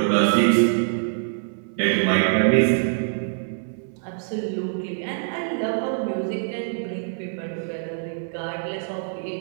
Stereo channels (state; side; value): silent; left; 62 dB below the other